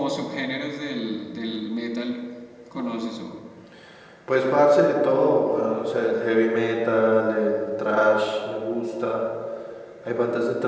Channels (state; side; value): identical; both; correlation 1.00